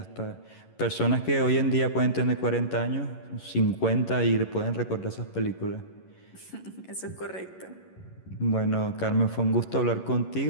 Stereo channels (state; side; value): late; right; 11 ms